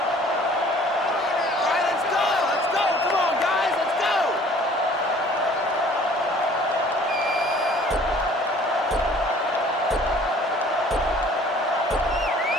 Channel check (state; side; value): normal; both; correlation 0.53